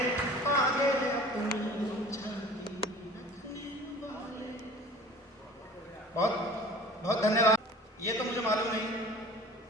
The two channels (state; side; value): normal; both; correlation 0.44